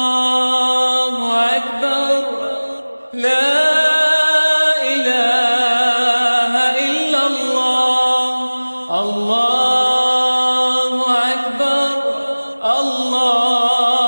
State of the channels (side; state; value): both; inverted; correlation -1.00